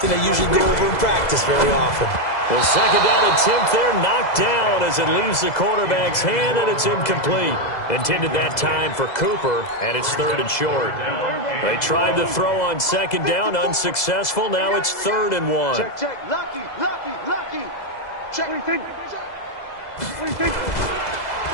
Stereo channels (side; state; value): right; late; 2.0 ms